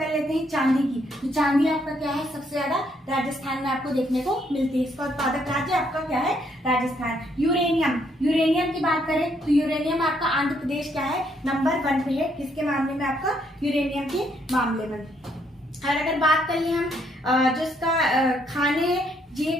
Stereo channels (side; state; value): both; normal; correlation 0.71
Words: लेते हैं चांदी की। तो चांदी आपका क्या है? सबसे ज्यादा राजस्थान में आपको देखने को मिलती है। इसका उत्पादक राज्य आपका क्या है? राजस्थान। यूरेनियम की बात करें तो यूरेनियम आपका आंध्र प्रदेश क्या है? नंबर 1 पे है। किसके मामले में? आपका यूरेनियम के मामले में। और अगर बात कर ले हम जो इसका खाने, ये